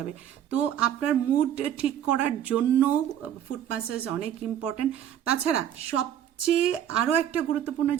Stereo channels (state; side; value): quieter; left; 10.3 dB